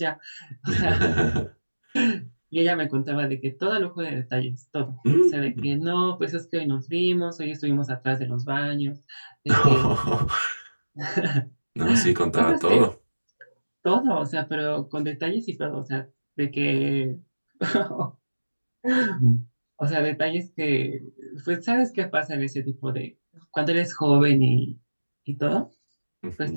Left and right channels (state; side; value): inverted; both; correlation -1.00